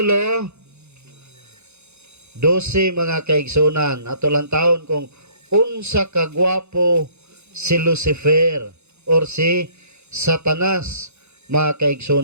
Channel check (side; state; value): left; late; 0.81 ms